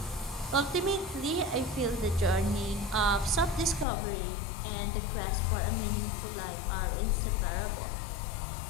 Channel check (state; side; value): drops out; right; at 3.9 s